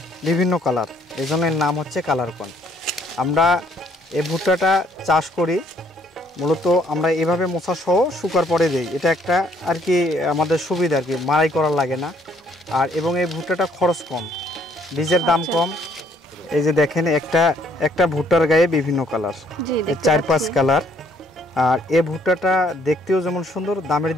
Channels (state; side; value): normal; both; correlation 0.65